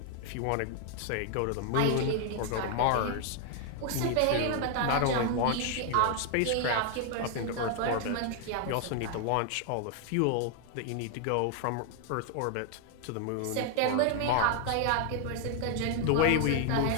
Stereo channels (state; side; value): different; both; correlation 0.00